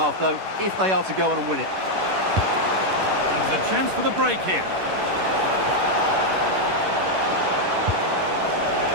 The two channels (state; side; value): late; left; 11 ms